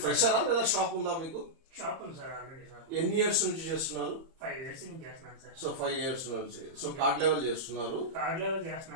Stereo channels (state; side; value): late; left; 30 ms